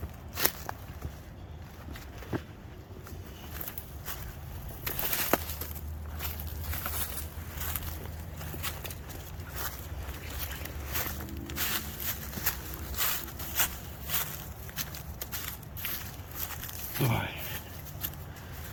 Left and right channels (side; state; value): both; identical; correlation 1.00